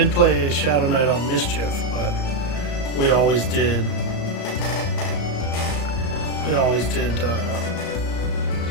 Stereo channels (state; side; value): late; right; 35 ms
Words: play a Shadow Knight on Mischief, but we always did